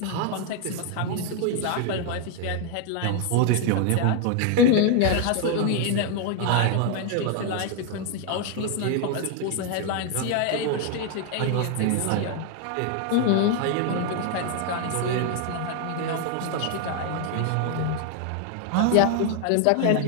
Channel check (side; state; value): both; different; correlation 0.00